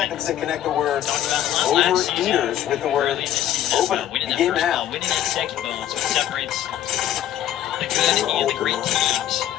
to connect the word talked about a lot last season. Overeaters with the word Early this season as open. well. Winning that Game first now. ball, winning that second ball. It's what separates the good and the great teams.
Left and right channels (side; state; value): right; quieter; 11.7 dB